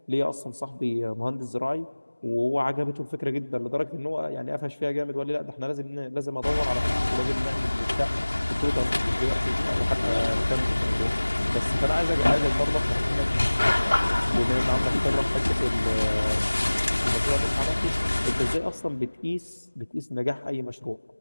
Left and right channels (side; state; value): both; inverted; correlation -1.00